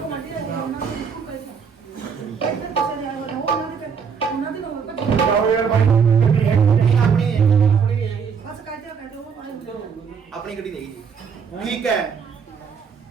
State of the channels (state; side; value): quieter; left; 6.3 dB